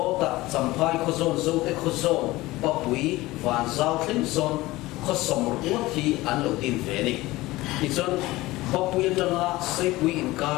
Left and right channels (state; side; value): quieter; right; 19.0 dB